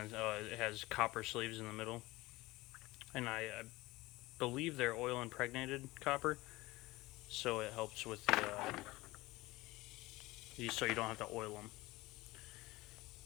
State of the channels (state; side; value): quieter; right; 20.1 dB